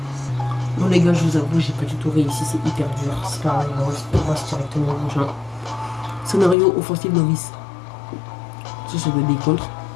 Bon, les gars, je vous avoue, j'ai pas du tout réussi. C'est hyper dur. C'est pas grave, on passe directement au prochain. Scénario offensif novice. Ça doit être des contres.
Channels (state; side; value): drops out; right; at 6.6 s